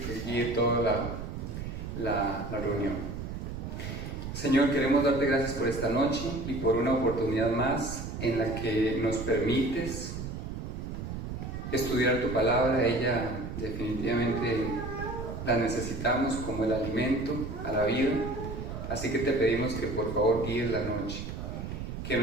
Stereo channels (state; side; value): noise; right; rumble, 6 dB below the sound